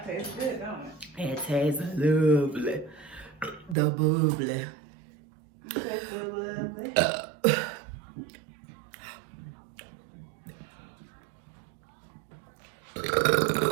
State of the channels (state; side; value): drops out; left; at 3.8 s